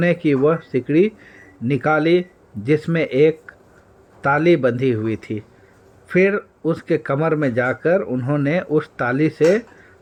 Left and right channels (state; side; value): identical; both; correlation 1.00